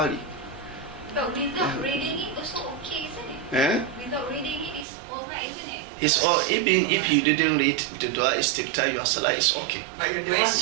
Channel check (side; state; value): left; drops out; at 4.9 s